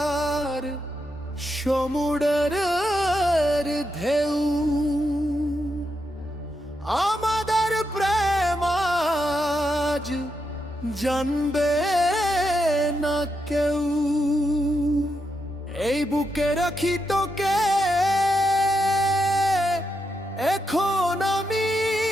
সমুদ্রের ঢেউ আমাদের প্রেম আজ জানবে না কেউ। এই বুকে রাখি তোকে এখন আমি,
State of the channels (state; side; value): normal; both; correlation 0.84